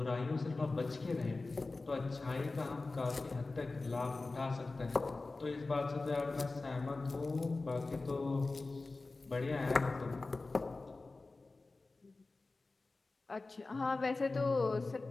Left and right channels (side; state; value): right; quieter; 3.5 dB